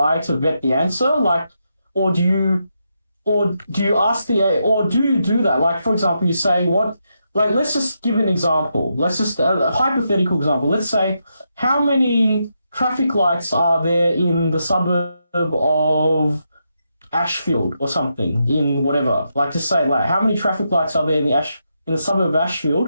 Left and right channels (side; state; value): both; inverted; correlation -0.83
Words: to vet the answer, like, or do you ask the AI, or do you do that? Like, for example, you say what. Like, let's just give an example. Let's just a hypothetical example. Let's say, how many traffic lights are there in the suburb of Ashfield or something, in whatever? Like, just say, like, how many traffic lights are there in the suburb of